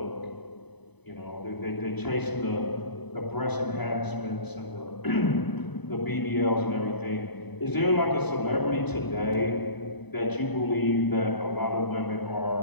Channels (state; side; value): late; right; 0.99 ms